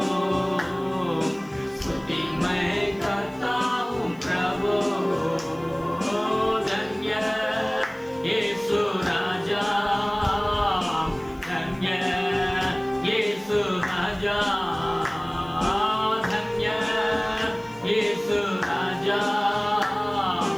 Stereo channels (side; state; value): left; noise; hiss, 29 dB below the sound